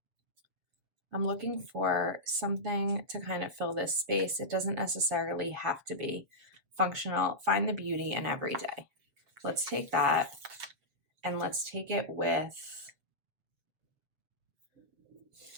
I'm looking for something to kind of fill this space. It doesn't necessarily have to be functional. Find the beauty in every day. Let's take that and let's take it with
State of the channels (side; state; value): left; late; 7.3 ms